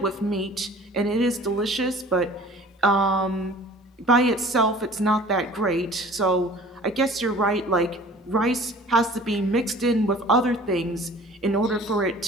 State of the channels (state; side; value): normal; both; correlation 0.47